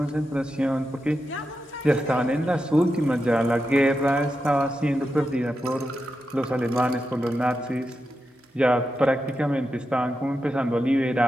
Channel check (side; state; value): both; normal; correlation 0.88